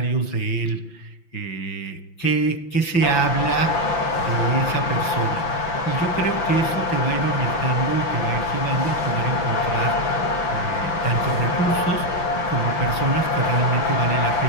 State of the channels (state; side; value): late; right; 5.9 ms